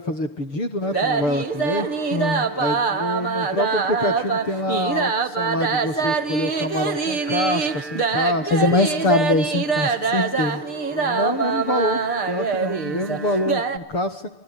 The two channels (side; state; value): right; late; 6.7 ms